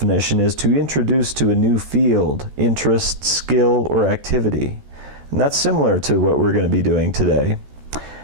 is to introduce to a new field, interest, skill, or activity. And that's similar to what we're going to be doing today.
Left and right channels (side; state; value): left; late; 14 ms